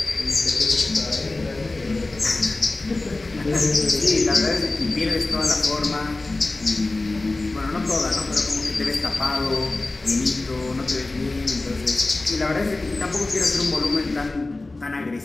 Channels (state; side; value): quieter; right; 3.1 dB